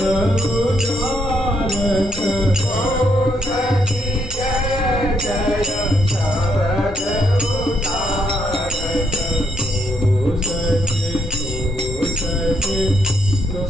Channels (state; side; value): normal; both; correlation 0.74